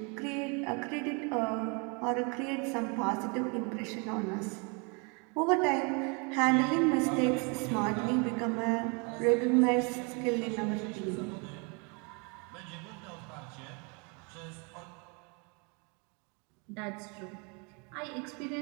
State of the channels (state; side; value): quieter; left; 33.0 dB